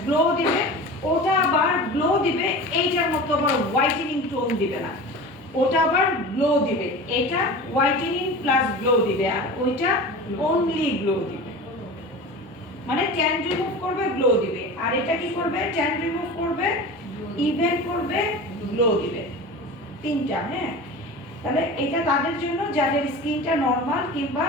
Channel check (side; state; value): both; normal; correlation 0.33